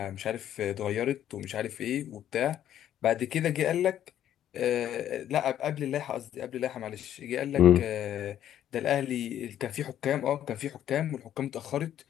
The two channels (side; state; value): right; quieter; 11.0 dB